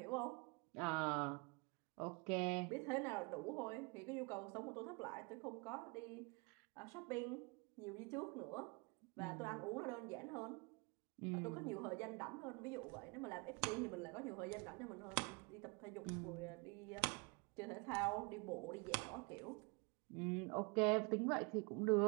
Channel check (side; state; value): left; quieter; 30.2 dB